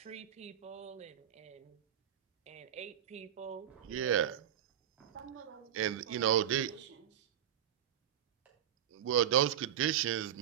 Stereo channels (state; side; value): quieter; left; 10.2 dB